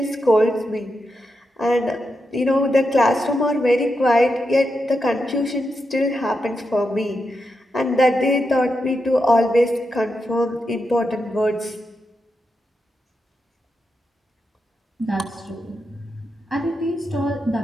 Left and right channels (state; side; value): normal; both; correlation 0.86